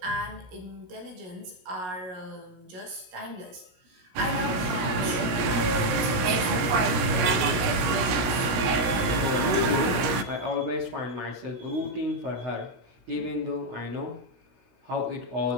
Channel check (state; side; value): late; left; 16 ms